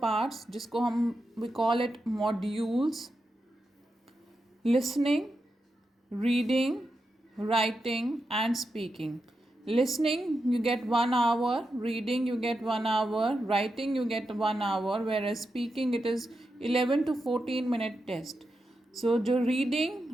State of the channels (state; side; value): normal; both; correlation 0.88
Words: जिसको हम we call it modules: listening, reading, writing and speaking. Listening you get 1 hour, reading you get 1 hour, writing you get 1 hour, whereas speaking it is 11 to 14 minute test. So the reading,